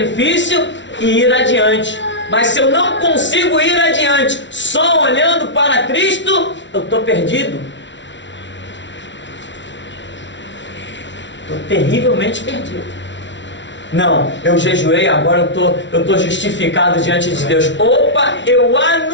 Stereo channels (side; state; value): right; late; 0.53 ms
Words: e ir adiante. Mas se eu não consigo ir adiante só olhando para Cristo, eu estou perdido. Estou terrivelmente perdido. Não, eu jejuei, agora eu estou justificado diante de Deus. Opa, eu